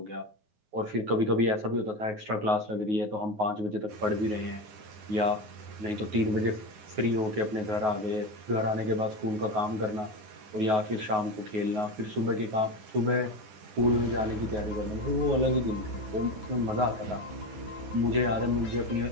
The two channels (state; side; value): late; left; 9.4 ms